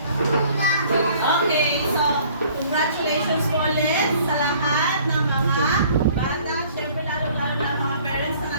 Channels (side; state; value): both; inverted; correlation -0.55